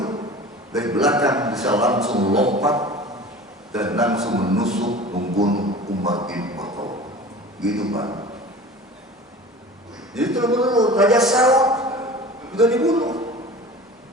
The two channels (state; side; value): normal; both; correlation 0.39